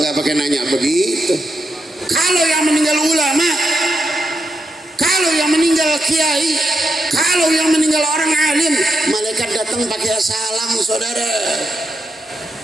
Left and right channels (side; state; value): both; normal; correlation 0.84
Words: pakai nanya begitu. Kalau yang meninggal ulama, kalau yang meninggal kiai, kalau yang meninggal orang alim, malaikat datang pakai salam, saudara.